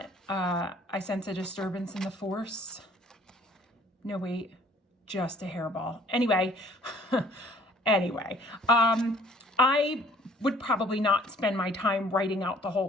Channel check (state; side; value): normal; both; correlation 0.57